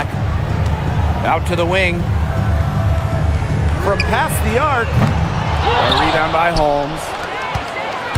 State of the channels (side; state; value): both; identical; correlation 1.00